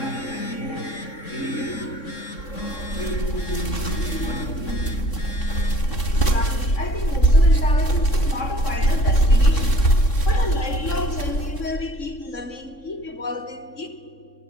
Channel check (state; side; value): late; right; 3.6 ms